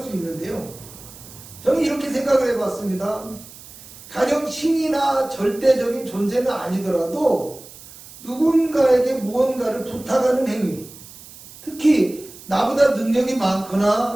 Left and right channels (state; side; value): noise; right; hiss, 18 dB below the sound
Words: 수 있는데요. 저는 이렇게 생각을 해봤습니다. 가령 신이나 절대적인 존재는 아니더라도 누군가에게 무언가를 부탁하는 행위, 특히 나보다 능력이